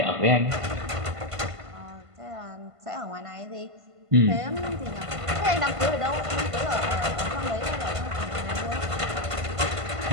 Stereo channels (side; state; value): left; late; 1.5 ms